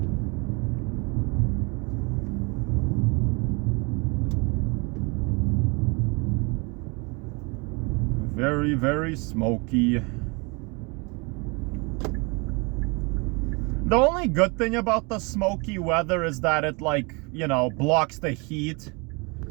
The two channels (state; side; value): quieter; left; 29.9 dB